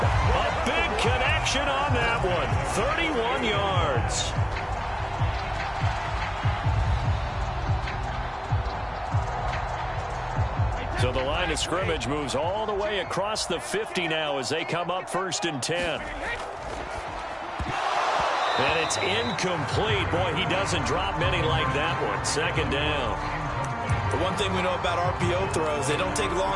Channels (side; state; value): both; identical; correlation 1.00